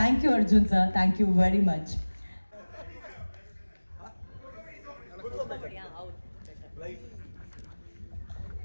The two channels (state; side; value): inverted; both; correlation -1.00